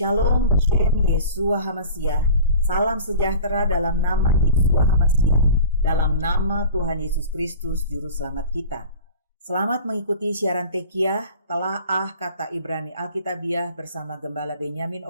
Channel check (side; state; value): both; inverted; correlation -0.40